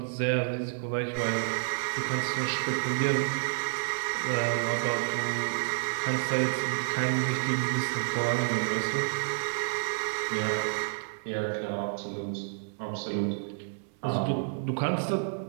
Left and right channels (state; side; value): silent; left; 58 dB below the other